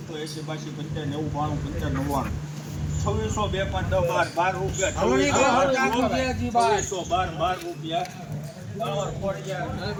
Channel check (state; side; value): identical; both; correlation 1.00